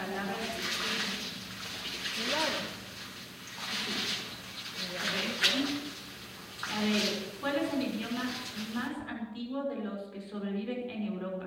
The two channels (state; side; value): identical; both; correlation 1.00